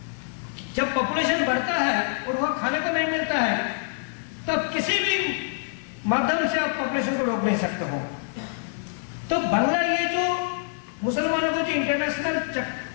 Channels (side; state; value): right; silent; digital silence